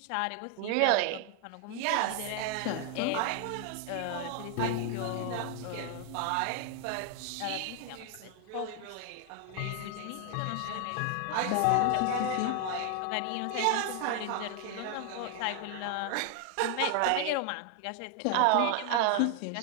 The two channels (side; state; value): both; different; correlation 0.00